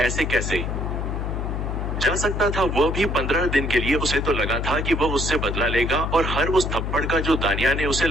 ऐसे कैसे जा सकता था? वह भी 15 दिन के लिए। उसे तो लगा था कि वह उससे बदला लेगा और हर उस थप्पड़ का जो दानिया ने उसे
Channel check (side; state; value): left; noise; hum, 2 dB below the sound